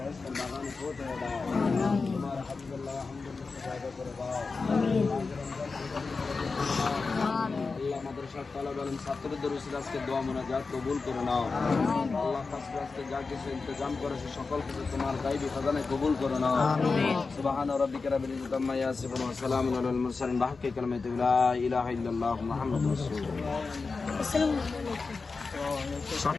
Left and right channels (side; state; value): right; quieter; 4.3 dB